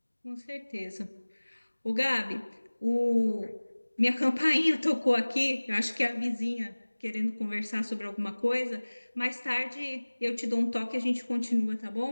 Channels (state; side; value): inverted; both; correlation -1.00